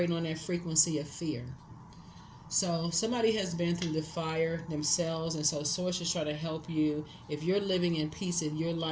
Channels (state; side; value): identical; both; correlation 1.00